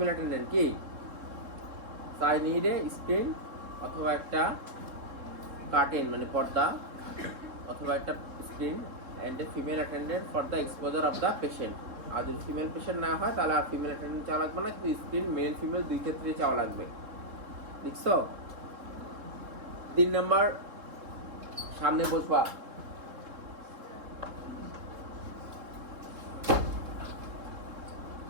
অ্যাটেন্ডেন্ট কি? আই নিড এ স্ক্রিন অথবা একটা কার্টেন মানে পর্দা অথবা একটা screen and a female attendant for the exposure of the patient. আর যদি ফিমেল পেশেন্ট না হয় তাহলে আর ফিমেল অ্যাটেন্ডেন্ট চাওয়া লাগবে না, কিন্তু স্ক্রিন মেল ফিমেল দুই ক্ষেত্রে চাওয়া লাগবে। লিখছো? 3 নাম্বার সামনে বসবা,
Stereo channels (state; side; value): late; left; 3.7 ms